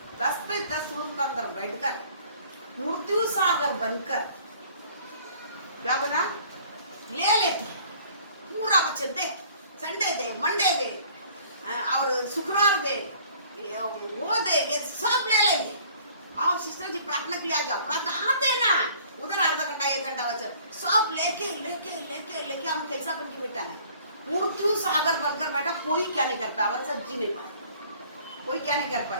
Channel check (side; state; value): both; inverted; correlation -0.54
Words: 10 पे 10 रूम के अंदर बैठकर मृत्यु सागर बनकर क्या बना ले लेते हैं। पूरा वचन दे, संडे दे, मंडे दे और शुक्रवार दे, वो दे, ये सब ले लेंगे। आओ सिस्टर जी प्रार्थना के लिए आ जाओ, प्रार्थना आते ना, उधर आधा घंटा 1 घंटा वचन सब लेके लेके लेके लेके हम कैसा बन के बैठा है, मृत्यु सागर बनकर बैठा। कोई क्या नहीं कर पाया, हमारे साथ जी नहीं पाया, कोई क्या नहीं कर